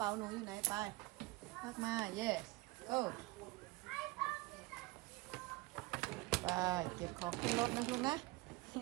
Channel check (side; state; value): left; quieter; 21.6 dB